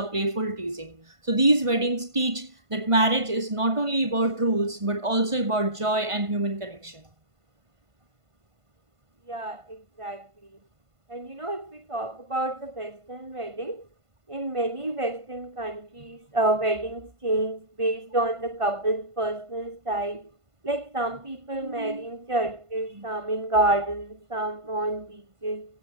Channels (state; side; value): late; left; 1.5 ms